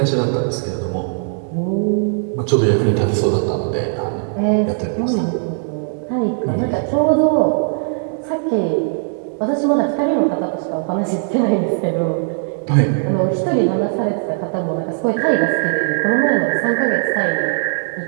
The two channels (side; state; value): left; silent; digital silence